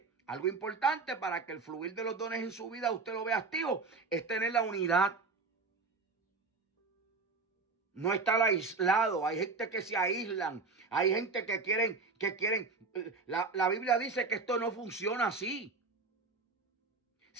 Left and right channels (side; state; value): left; quieter; 4.2 dB